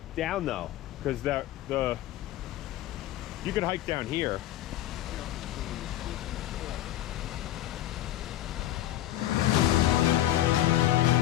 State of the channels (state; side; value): quieter; right; 13.8 dB